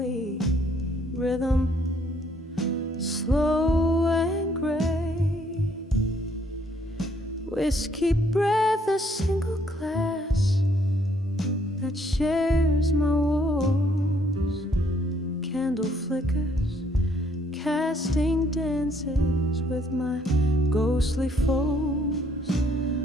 rhythm, slow and gray. Whiskey breath, a single glass that shares my walls. Candle flickers, casting dances with my ghostly foes.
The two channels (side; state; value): both; normal; correlation 0.66